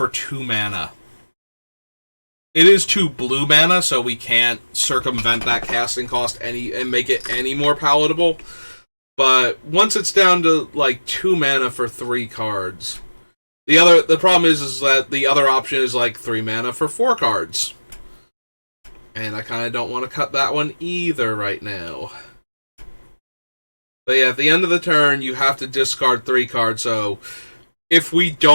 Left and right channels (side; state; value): both; inverted; correlation -1.00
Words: 2 mana. It is 2 blue mana, so we can't circumvent that casting cost and make it any more palatable. But once it's down to, like, 2 mana for 3 cards... The problem is that the other option is, like, 3 mana for 4 cards. And I kind of don't want to cut that one either right now. But yeah, at the end of the turn, you have to discard 3 cards, so if we